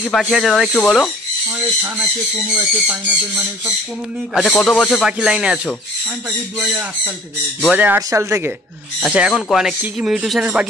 কি পাখি আছে দাদা একটু বলো। আচ্ছা কত বছর পাখি লাইনে আছো? 2008 সাল থেকে। আচ্ছা এখন কি কি মিউটেশনের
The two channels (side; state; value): both; normal; correlation 0.51